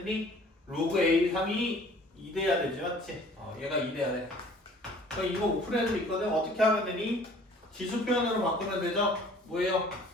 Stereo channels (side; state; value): both; normal; correlation 0.52